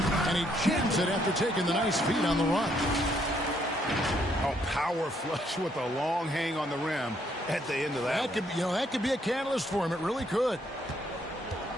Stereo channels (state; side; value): normal; both; correlation 0.71